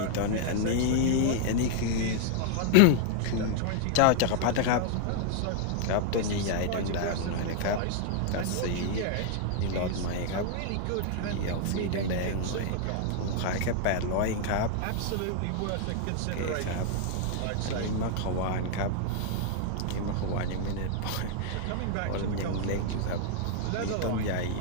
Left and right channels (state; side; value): different; both; correlation 0.00